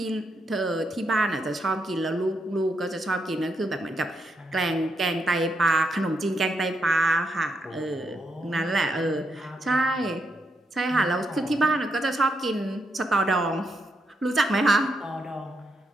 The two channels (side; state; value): both; normal; correlation 0.80